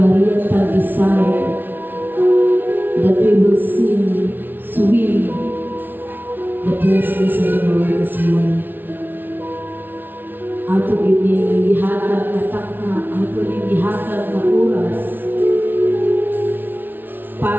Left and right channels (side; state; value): left; late; 0.092 ms